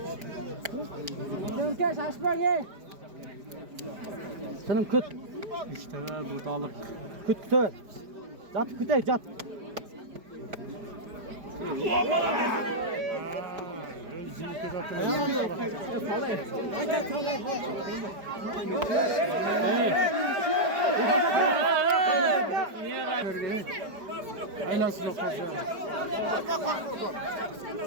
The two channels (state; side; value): late; left; 4.9 ms